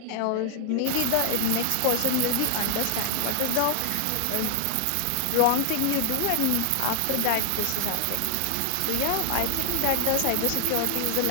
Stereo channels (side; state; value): both; different; correlation 0.00